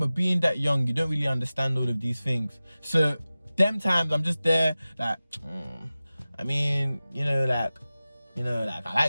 being that young, you don't really understand all of these things. So them times I'm just there like, I mean, I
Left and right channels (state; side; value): inverted; both; correlation -0.96